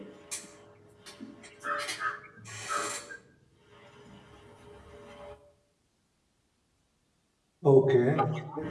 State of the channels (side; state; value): both; identical; correlation 1.00